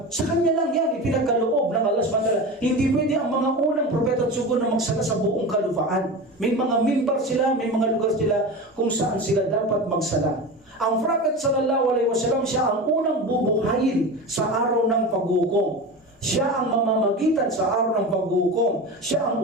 sa kanya lang yan, ipinagkaloob ng Allah subhanahu wa ta'ala. Hindi pwede ang mga unang propeta at sugo na magsala sa buong kalupaan. May mga mimbar sila, may mga lugar sila kung saan sila dapat magsala. Ang Prophet sallallahu alaihi wasallam, siya ang unang bubuhayin sa araw ng paghukom. Siya ang mamamagitan sa araw ng paghukom. Siya ang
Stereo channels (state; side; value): normal; both; correlation 0.27